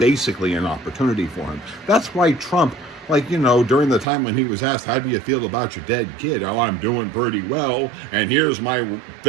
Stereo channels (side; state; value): left; drops out; at 4.0 s